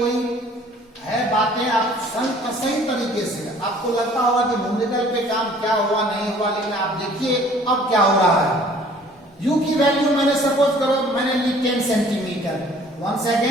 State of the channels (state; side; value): normal; both; correlation 0.54